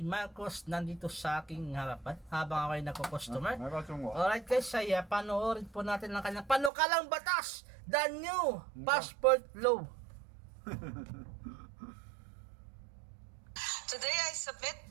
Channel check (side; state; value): left; drops out; at 6.7 s